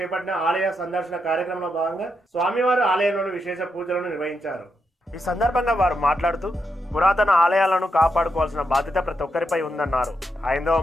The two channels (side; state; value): both; normal; correlation 0.83